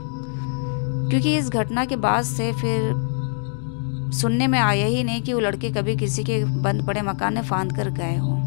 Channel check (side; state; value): right; silent; digital silence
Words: क्योंकि इस घटना के बाद से फिर सुनने में आया ही नहीं कि वो लड़के कभी किसी के बंद पड़े मकान में फांद कर गए हों।